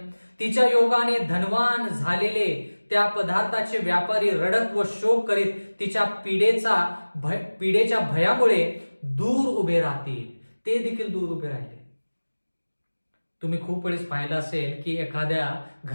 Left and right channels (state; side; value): inverted; both; correlation -1.00